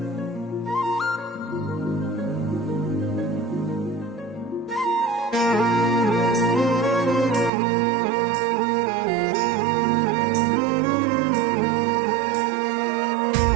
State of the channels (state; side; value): drops out; left; at 7.5 s